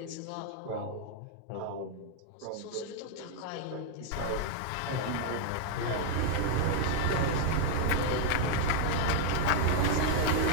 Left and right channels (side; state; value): both; different; correlation -0.01